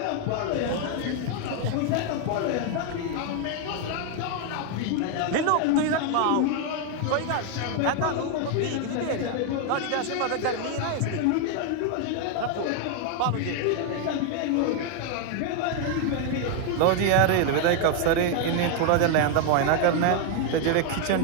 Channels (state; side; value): different; both; correlation 0.01